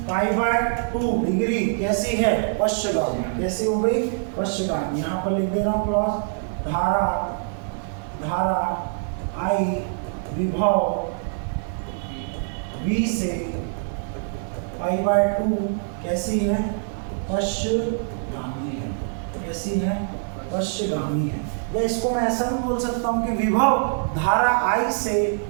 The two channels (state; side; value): silent; left; 62 dB below the other